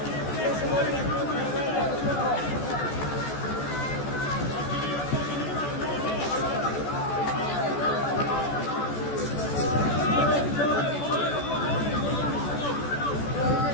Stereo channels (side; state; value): right; late; 14 ms